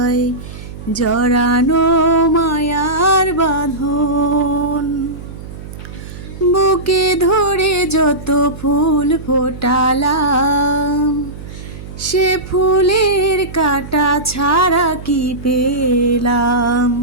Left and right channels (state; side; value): noise; right; hum, 13 dB below the sound